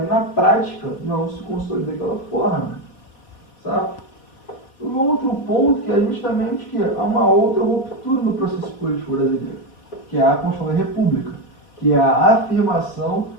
na prática não se consolida daquela forma. Sabe? O outro ponto que é justamente que há uma outra ruptura no processo político brasileiro, que é a Constituição da República, que é a afirmação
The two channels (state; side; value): late; right; 4.2 ms